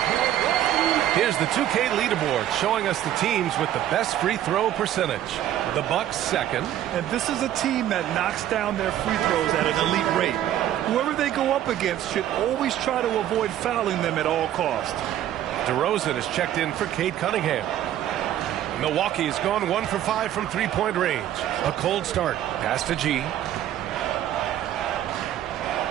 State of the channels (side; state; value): left; quieter; 11.9 dB